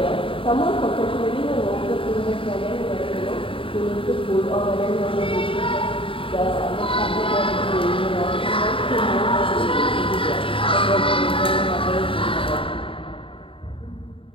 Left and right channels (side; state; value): right; late; 0.26 ms